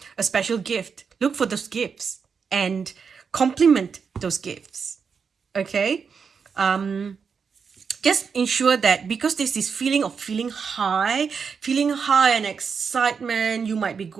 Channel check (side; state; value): left; quieter; 6.0 dB